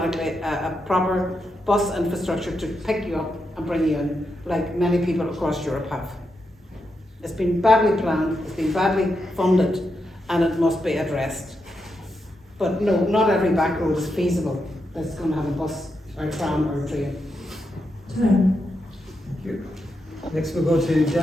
a proper bus infrastructure to pick you up and bring you in, like many people across Europe have. It's been badly planned, it's been badly funded, and it must be addressed. But no, not every back road is feasible that's going to have a bus or a tram or a train. Thank you. Next we'll go to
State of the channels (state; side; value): normal; both; correlation 0.85